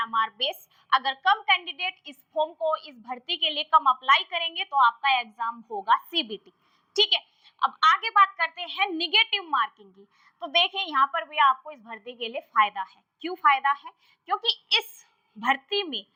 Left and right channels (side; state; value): both; identical; correlation 1.00